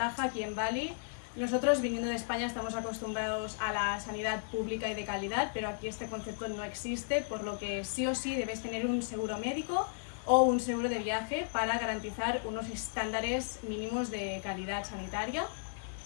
aquí en Bali. Nosotros, viniendo de España, estamos acostumbrados a la sanidad pública y de calidad, pero aquí este concepto no existe, por lo que sí o sí debes tener un seguro médico o un seguro de viaje para garantizar unos estándares mínimos de calidad sanitaria.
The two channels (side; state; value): right; silent; digital silence